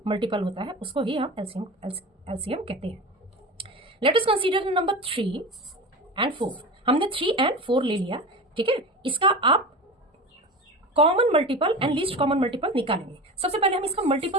मल्टीपल होता है उसको ही हम एलसीएम कहते हैं। Let us consider number 3 and 4। हमने 3 एंड 4 ले लिया, ठीक है। इसका आप common multiple and least common multiple निकालेंगे। सबसे पहले हम इसका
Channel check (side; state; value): both; normal; correlation 0.29